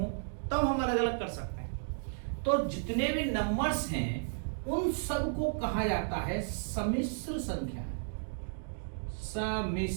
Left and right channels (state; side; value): silent; left; digital silence